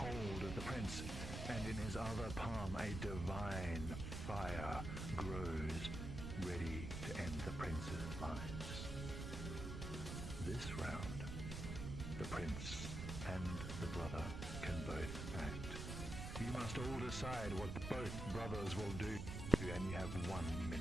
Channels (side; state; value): right; noise; rumble, 5 dB below the sound